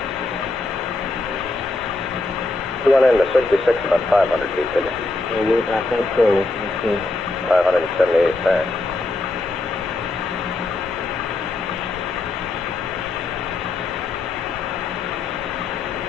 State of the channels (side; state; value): right; quieter; 3.2 dB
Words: You went into 66 about 500 feet, didn't you? I think so. Let's see. 578 there.